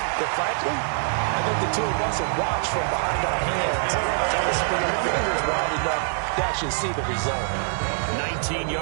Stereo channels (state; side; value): silent; left; 62 dB below the other